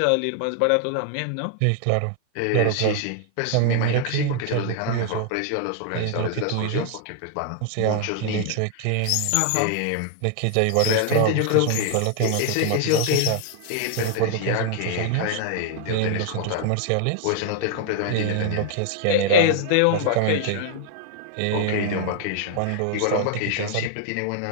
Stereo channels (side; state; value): both; different; correlation 0.00